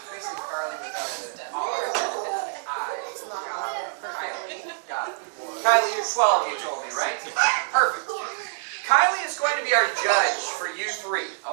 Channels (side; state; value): left; silent; 61 dB below the other